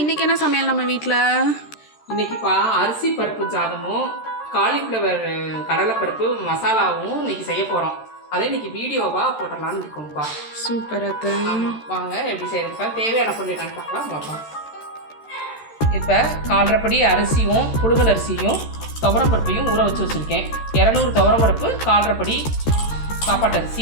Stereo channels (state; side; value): late; right; 13 ms